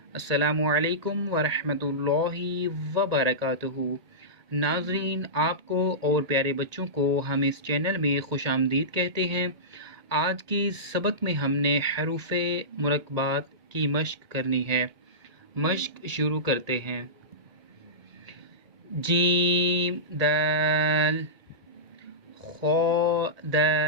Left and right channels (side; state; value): left; late; 1.8 ms